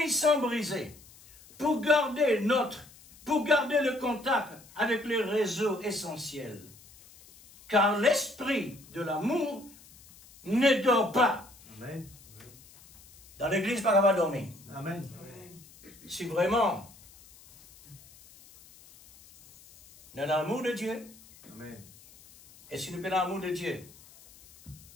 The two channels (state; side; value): noise; left; hiss, 23 dB below the sound